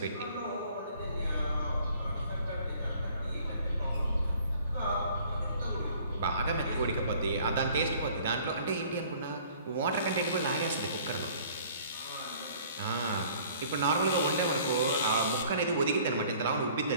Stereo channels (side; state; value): both; inverted; correlation -0.54